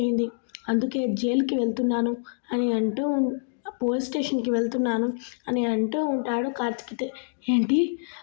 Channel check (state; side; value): silent; right; digital silence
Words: అందుకే జైలుకి వెళ్తున్నాను అని పోలీస్ స్టేషన్కి వెళ్తున్నాను అని అంటూ ఉంటాడు కార్తిక్. ఏంటి,